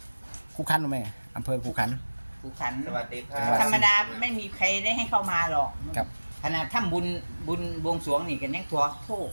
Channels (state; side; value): inverted; both; correlation -1.00